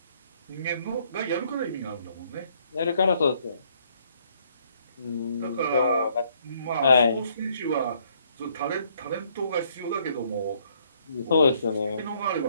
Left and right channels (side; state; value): both; inverted; correlation -0.68